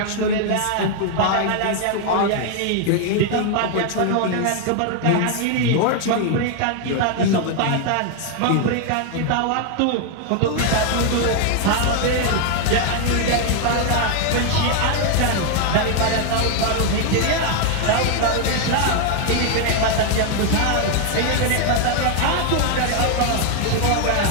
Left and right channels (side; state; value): both; different; correlation 0.00